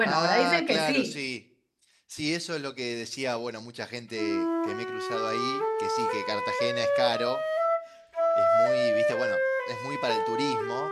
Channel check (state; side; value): identical; both; correlation 1.00